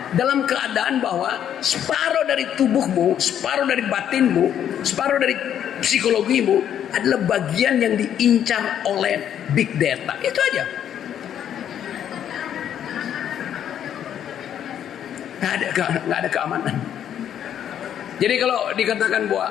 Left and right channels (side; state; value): right; quieter; 9.8 dB